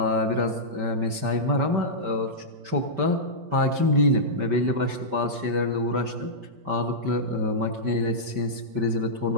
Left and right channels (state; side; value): late; left; 5.2 ms